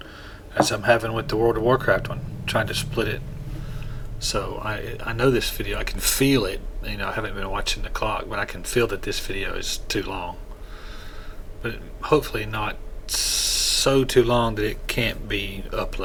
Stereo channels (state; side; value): identical; both; correlation 1.00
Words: as I'm having with the World of Warcraft one. trying to split it. So I know this video, I can feel it. You know, I haven't been watching the clock, but I can feel that this video is too long. But hopefully not so too long that it can't be